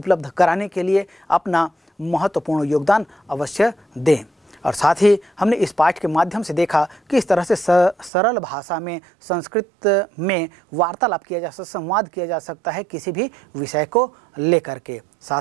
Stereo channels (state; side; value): drops out; left; at 8.1 s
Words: कराने के लिए अपना महत्वपूर्ण योगदान अवश्य दें। और साथ ही हमने इस पाठ के माध्यम से देखा कि इस तरह से सरल भाषा में संस्कृत में वार्तालाप किया जा सकता, संवाद किया जा सकता है किसी भी विषय को लेकर के।